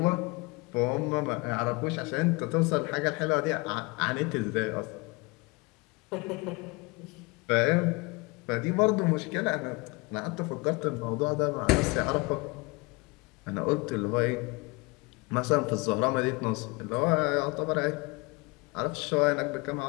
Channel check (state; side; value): quieter; right; 26.7 dB